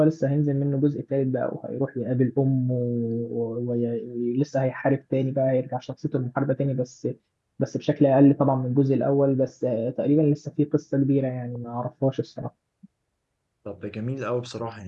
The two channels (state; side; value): identical; both; correlation 1.00